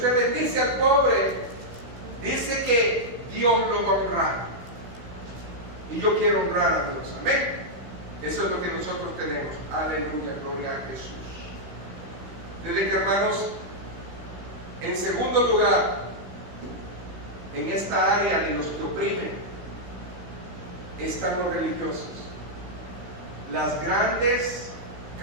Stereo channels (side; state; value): left; late; 16 ms